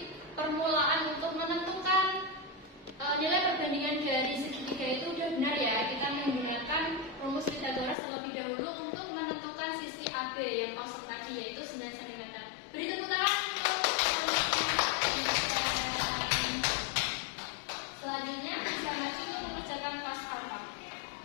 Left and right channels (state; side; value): drops out; right; at 8.0 s